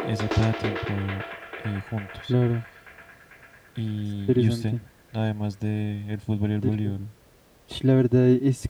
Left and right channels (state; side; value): identical; both; correlation 1.00